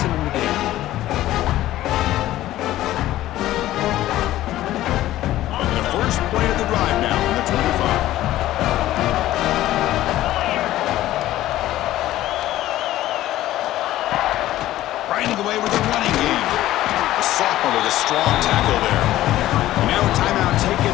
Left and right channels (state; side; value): quieter; right; 14.6 dB